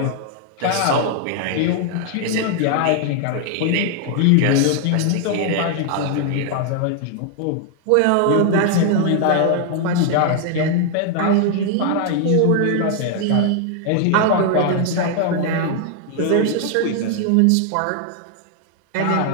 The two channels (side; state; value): both; different; correlation 0.00